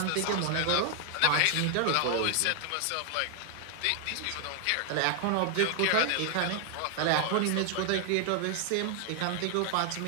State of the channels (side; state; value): both; different; correlation 0.00